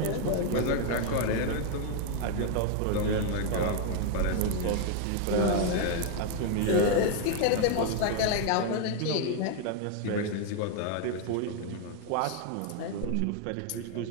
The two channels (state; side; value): different; both; correlation 0.00